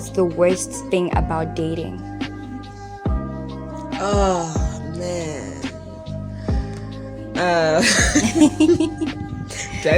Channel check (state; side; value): identical; both; correlation 1.00